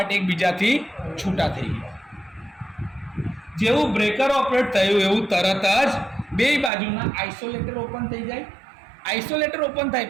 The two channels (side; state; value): left; drops out; at 6.7 s